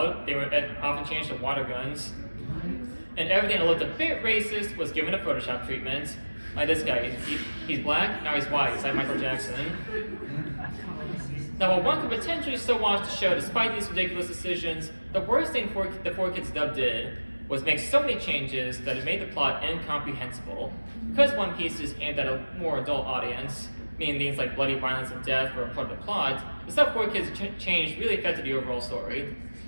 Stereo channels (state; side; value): inverted; both; correlation -1.00